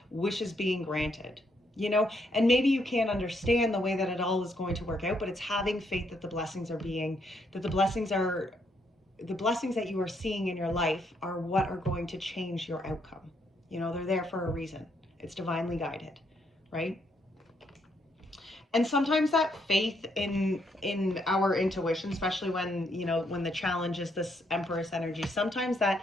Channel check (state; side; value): normal; both; correlation 0.74